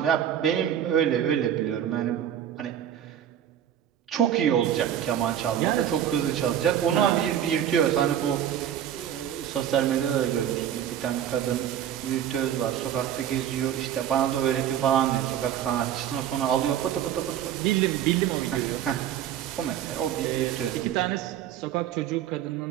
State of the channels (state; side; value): quieter; left; 10.2 dB